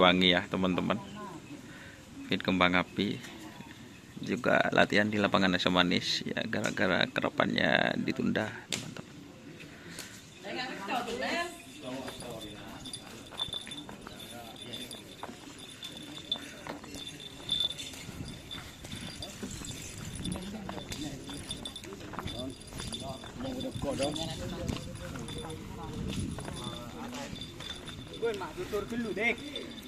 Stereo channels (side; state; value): both; identical; correlation 1.00